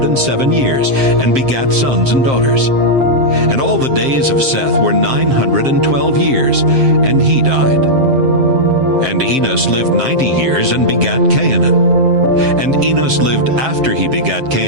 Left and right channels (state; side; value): late; left; 7.6 ms